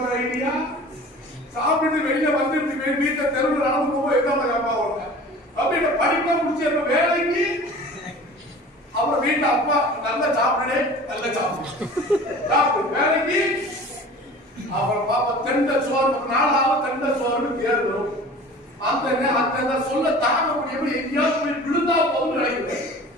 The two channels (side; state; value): both; normal; correlation 0.42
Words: ஐடியா சாப்பிட்டு வெளியில வந்து வீட்டை தெருவில் நடந்து போகும்போது எதாவது கேப்பா உடனே அப்படின்னு படிப்பா முடிச்சு எப்ப வேலைக்கு அப்புறம் வீட்டுல அப்பா நல்லா சாப்பிடுனே நல்ல சாப்பிடு வேலைக்கு அப்புறம் பாப்பா தெண்ட சோறு 4 ஆகும் தெண்ட சோறுன்னு பேர் வரும். அந்த சொல்ல தாங்க முடியாம எங்கேயாவது போய் விழுந்தா போதும் நினைக்கிறேன்.